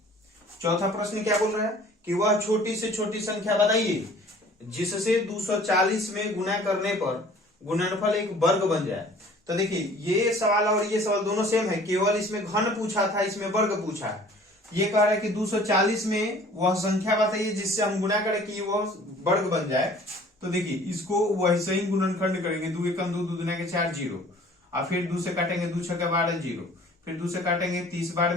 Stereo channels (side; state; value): both; normal; correlation 0.51